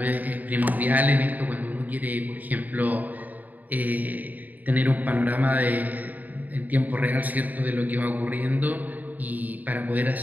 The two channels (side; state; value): left; late; 0.080 ms